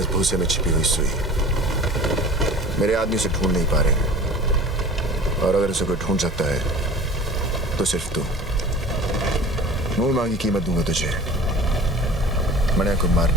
भूसे में छिपी हुई सुई। मेरे आदमी से ढूंढ नहीं पा रहे, और अगर उसे कोई ढूंढ सकता है तो सिर्फ तू। मुंह मांगी कीमत दूंगा तुझे मनिया को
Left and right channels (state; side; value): normal; both; correlation 0.42